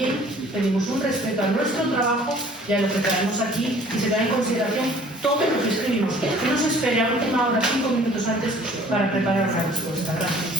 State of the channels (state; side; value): normal; both; correlation 0.53